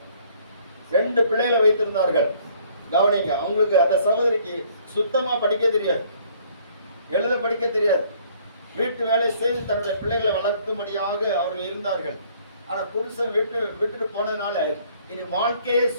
2 பிள்ளைகளை வைத்திருந்தார்கள். கவனிங்க, அவங்களுக்கு அந்த சகோதரிக்கு சுத்தமா படிக்க தெரியாது. எழுத படிக்க தெரியாது. வீட்டு வேலை செய்து தன்னுடைய பிள்ளைகளை வளர்க்கும்படியாக அவர்கள் இருந்தார்கள். ஆனா புருஷன் விட்டுட்டு போனதுனால இனி வாழ்க்கையே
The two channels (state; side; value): inverted; both; correlation -0.60